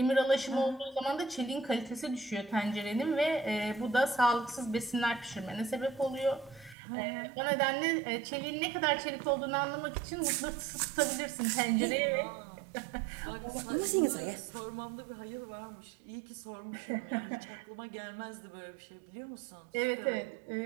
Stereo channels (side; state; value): left; drops out; at 6.8 s